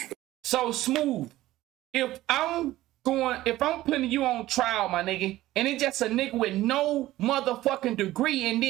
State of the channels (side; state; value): left; quieter; 15.8 dB